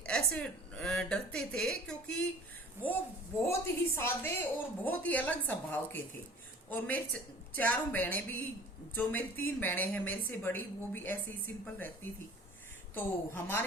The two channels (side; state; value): both; normal; correlation 0.47